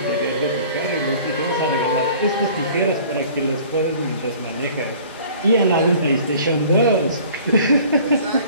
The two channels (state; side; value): inverted; both; correlation -0.49